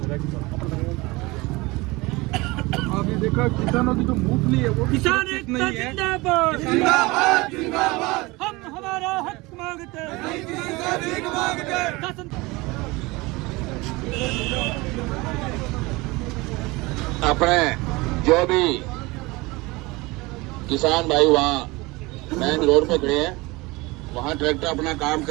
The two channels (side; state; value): left; quieter; 23.0 dB